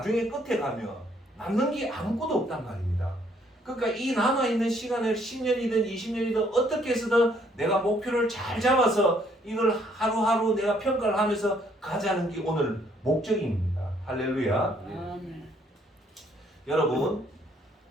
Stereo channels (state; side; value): normal; both; correlation 0.66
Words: 끝에 가면 남는 게 아무것도 없단 말입니다. 그러니까 이 남아있는 시간을 10년이든 20년이든 어떻게 해서든 내가 목표를 잘 잡아서 이걸 하루하루 내가 평가를 하면서 가자는 게 오늘 목적입니다. 할렐루야. 여러분,